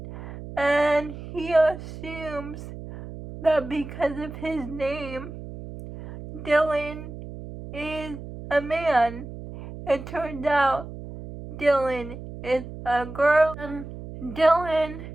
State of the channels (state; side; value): noise; right; hum, 12 dB below the sound